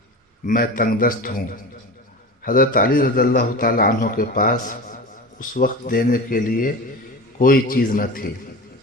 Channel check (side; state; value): both; normal; correlation 0.30